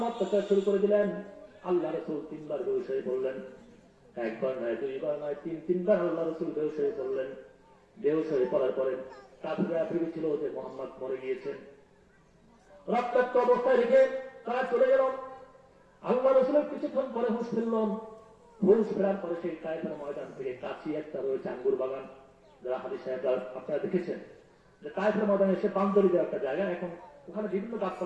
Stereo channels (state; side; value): identical; both; correlation 1.00